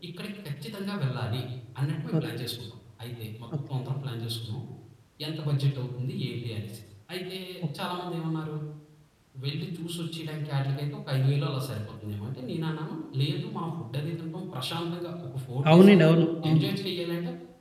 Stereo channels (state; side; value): identical; both; correlation 1.00